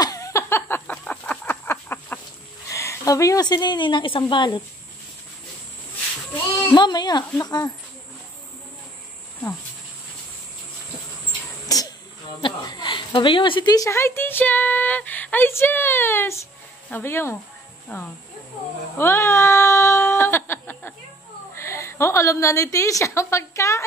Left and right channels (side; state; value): both; normal; correlation 0.57